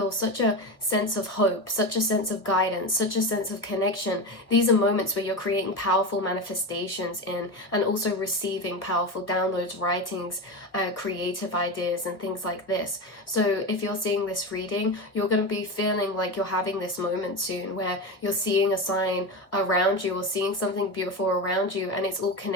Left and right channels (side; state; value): right; late; 1.2 ms